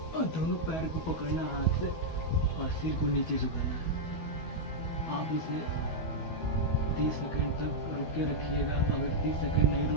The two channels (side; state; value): right; late; 12 ms